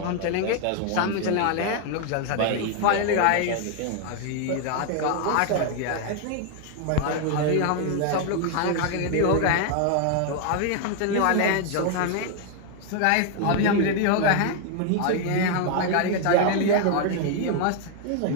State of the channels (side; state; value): both; different; correlation 0.00